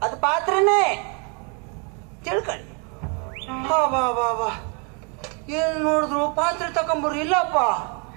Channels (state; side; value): quieter; left; 35.5 dB